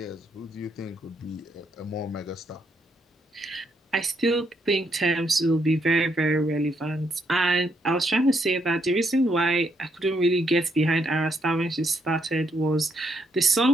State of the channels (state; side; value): normal; both; correlation 0.76